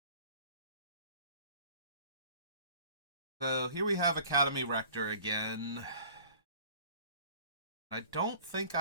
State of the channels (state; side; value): inverted; both; correlation -0.48